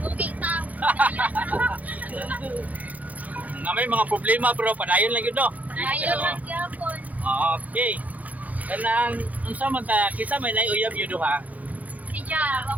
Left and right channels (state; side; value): late; left; 0.076 ms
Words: ta. Na may mga problema pero padayon lang yun, no? Ayaw lang gyapon. Okay. Kanang, unsa man ta, kisa may naiuyab yun duha? Si Ja,